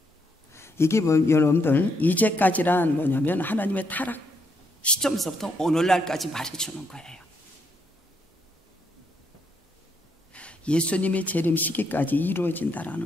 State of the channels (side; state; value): both; normal; correlation 0.76